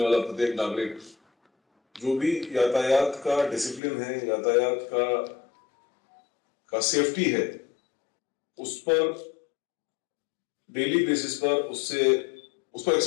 प्रत्येक नागरिक, जो भी यातायात का डिसिप्लिन है, यातायात का सेफ्टी है, उस पर डेली बेसिस पर उसको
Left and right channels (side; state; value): right; drops out; at 3.8 s